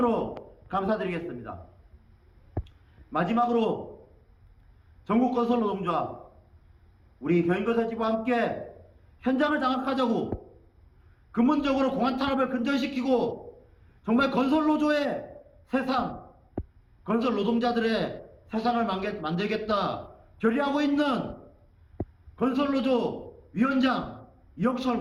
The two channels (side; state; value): both; identical; correlation 1.00